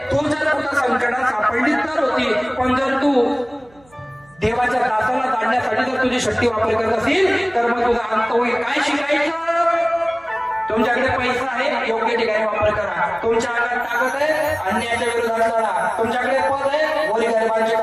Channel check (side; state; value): right; noise; hum, 30 dB below the sound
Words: तू जर कुठं संकटात सापडली तर होती, पण जर तू देवाच्या दासाला जाणण्यासाठी जर तुझी शक्ती वापर करत असेल तर मग तुझा अंत होईल. काय शिकायचं? तुमच्याकडे पैसा आहे, योग्य ठिकाणी वापर करा. तुमच्या अंगात ताकद आहे, अन्यायाच्या विरोधात लढा. तुमच्याकडे पद आहे, गोरी गरिबांची